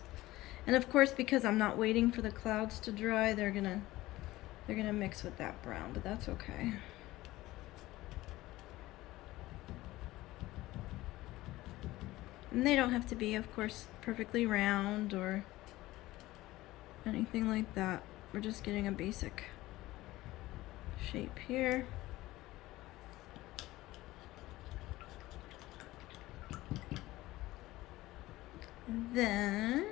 And of course, because I'm not waiting for the clouds to dry, they're gonna mix with that brown, but that's okay. And they don't have to be, of course, perfectly round or anything like that. We're just getting a basic shape here. And then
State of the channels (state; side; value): quieter; right; 17.6 dB